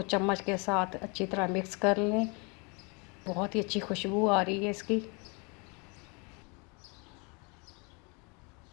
चम्मच के साथ अच्छी तरह मिक्स कर लें। बहुत ही अच्छी खुशबू आ रही है इसकी।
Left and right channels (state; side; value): quieter; right; 31.5 dB